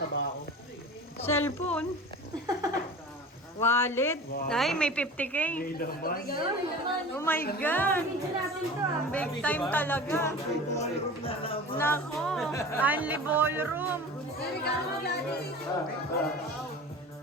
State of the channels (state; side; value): normal; both; correlation 0.37